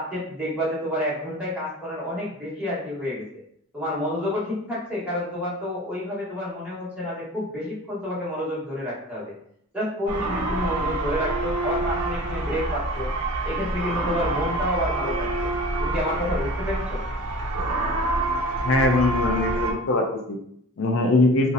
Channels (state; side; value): normal; both; correlation 0.40